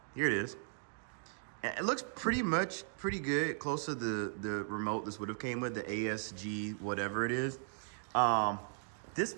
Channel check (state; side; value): silent; left; digital silence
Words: Here it is. And it looks pretty good, close to the remote this would have came with, the ASG, whatever it is. This